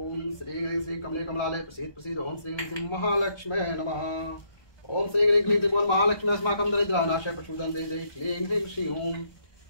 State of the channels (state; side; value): late; right; 1.2 ms